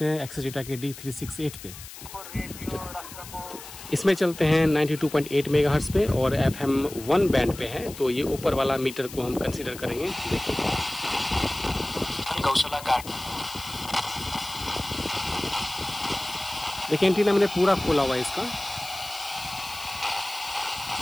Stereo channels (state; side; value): noise; left; hiss, 14 dB below the sound